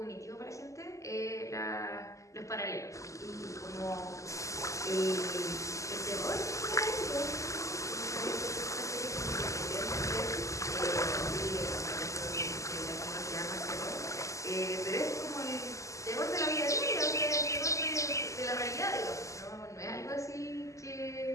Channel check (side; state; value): right; late; 0.16 ms